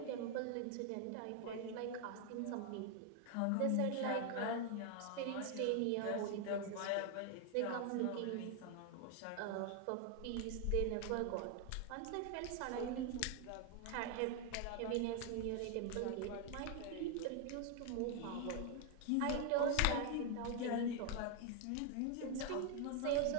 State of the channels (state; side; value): different; both; correlation 0.00